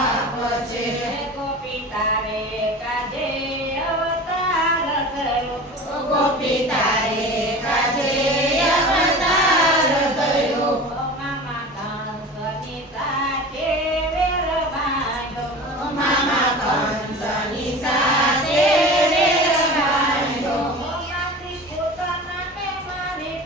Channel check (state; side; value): normal; both; correlation 0.35